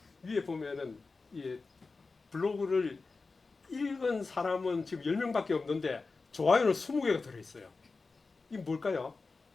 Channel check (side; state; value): right; quieter; 4.0 dB